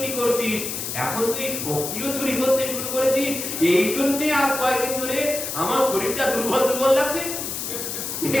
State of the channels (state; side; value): noise; left; hiss, 5 dB below the sound